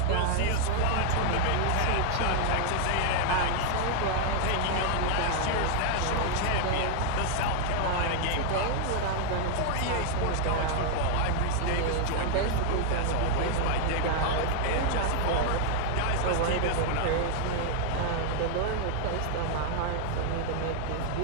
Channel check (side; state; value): both; different; correlation 0.00